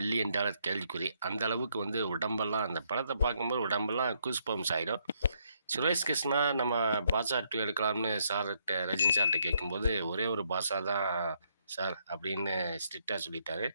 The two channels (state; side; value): inverted; both; correlation -0.73